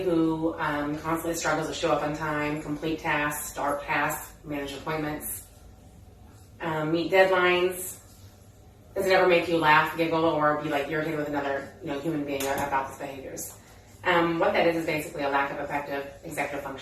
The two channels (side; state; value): both; identical; correlation 1.00